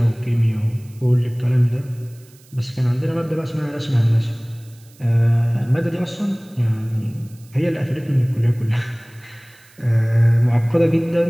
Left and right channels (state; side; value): noise; right; hiss, 28 dB below the sound